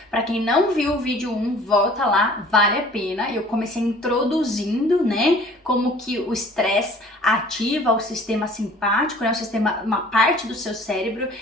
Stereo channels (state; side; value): normal; both; correlation 0.50